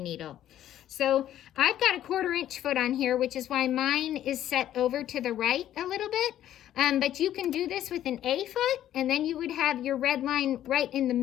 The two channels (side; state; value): right; quieter; 11.9 dB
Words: So I've got a 1/4 inch foot on here, which is why mine is set over to the right a little bit. But you can do this with an A foot, and then you would have your red line right in the